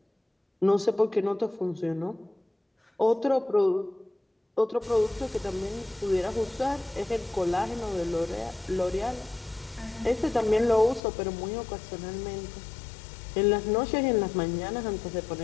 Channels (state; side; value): drops out; right; at 11.0 s